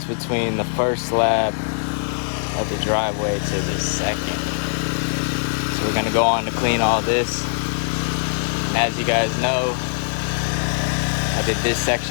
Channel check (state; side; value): silent; right; 64 dB below the other